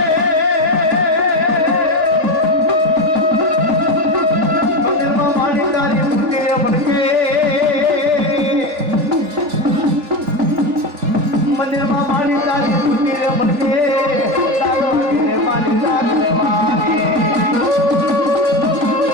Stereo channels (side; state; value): left; late; 3.4 ms